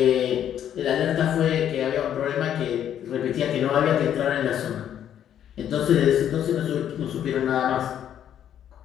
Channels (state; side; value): quieter; right; 10.1 dB